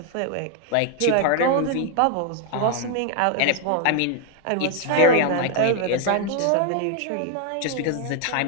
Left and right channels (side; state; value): both; different; correlation 0.00